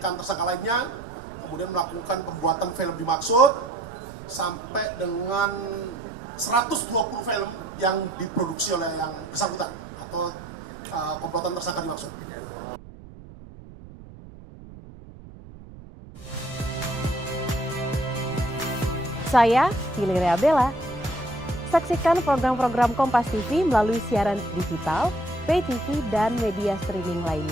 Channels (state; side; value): noise; right; rumble, 17 dB below the sound